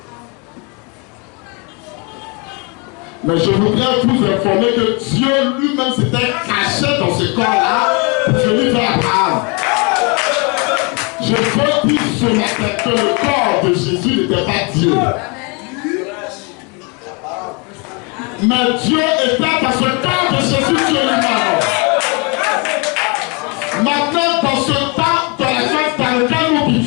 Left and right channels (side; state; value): right; quieter; 31.9 dB